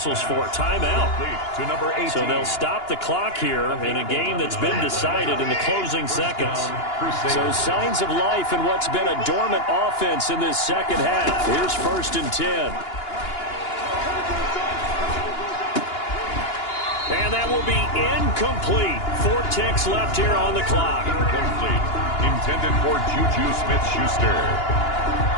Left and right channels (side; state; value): right; late; 2.9 ms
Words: for? Timeout. To number 18. So they'll stop the clock here in a game that's been decided in the closing seconds. So signs of life in what's been a dormant offense in this second half. Here's 1st and 10. And that will be incomplete. 4 ticks left here on the clock. Incomplete. Intended for Juju Smith-Schuster.